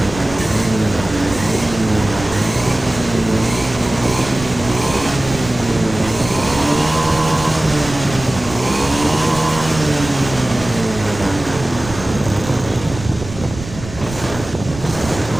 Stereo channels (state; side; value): noise; right; rumble, 12 dB below the sound